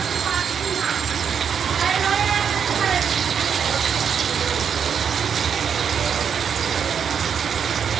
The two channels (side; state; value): left; quieter; 7.4 dB